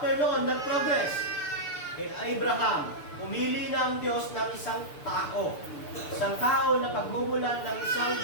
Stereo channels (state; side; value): late; right; 6.8 ms